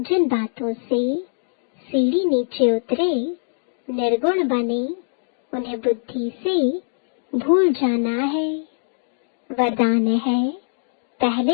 बातों से सीढ़ी नीचे उतरे निर्गुण बने उन्हें बुद्धि से भूल जाना है। वरदान है,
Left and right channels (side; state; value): right; silent; digital silence